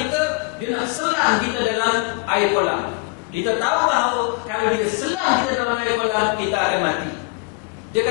dia nak selam kita dalam air kolam. Kita tahu bahawa kalau dia selam kita dalam air kolam, kita akan mati. Dia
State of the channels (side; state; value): right; quieter; 27.8 dB